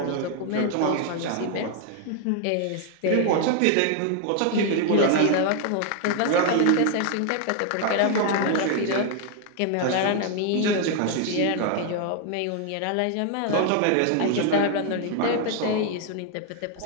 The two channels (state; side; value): different; both; correlation 0.00